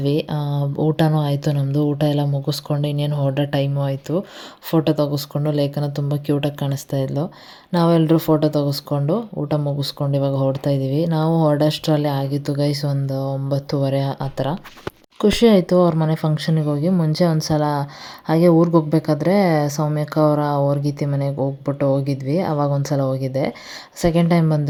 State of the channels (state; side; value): identical; both; correlation 1.00